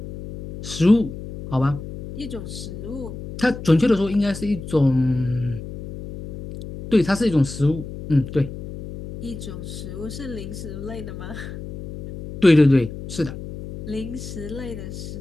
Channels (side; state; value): left; noise; hum, 10 dB below the sound